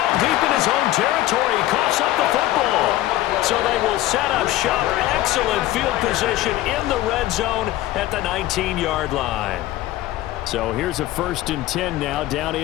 deep in his own territory, he coughs up the football. So they will set up shop. Excellent field position in the red zone at the 19-yard line. So here's a 1st and 10 now down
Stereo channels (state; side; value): quieter; right; 15.5 dB